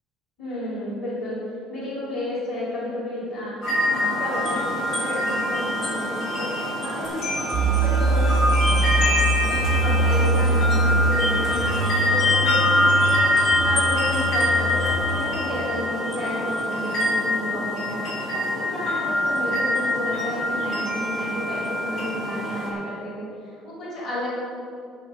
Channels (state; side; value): normal; both; correlation 0.51